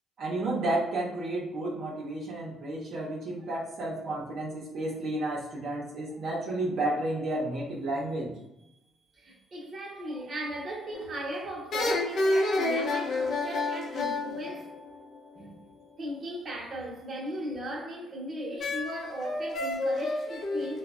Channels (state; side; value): normal; both; correlation 0.70